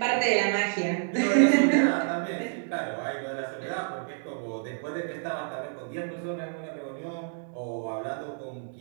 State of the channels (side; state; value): left; silent; digital silence